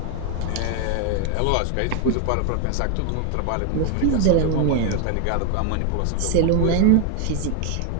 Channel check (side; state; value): both; different; correlation 0.01